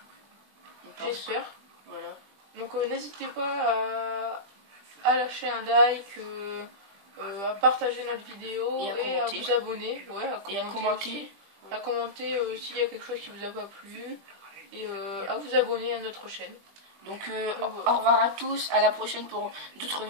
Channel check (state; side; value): late; left; 20 ms